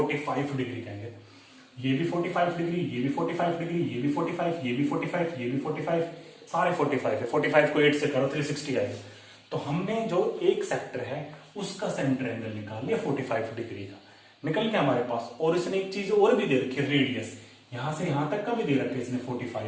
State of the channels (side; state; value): both; identical; correlation 1.00